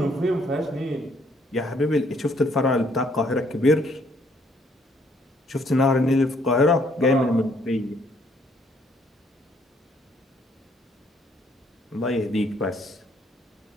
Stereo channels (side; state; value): both; normal; correlation 0.66